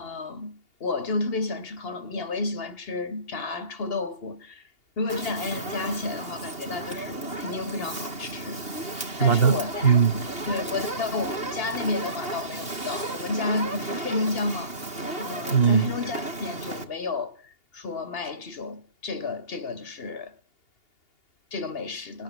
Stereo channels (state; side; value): late; right; 2.8 ms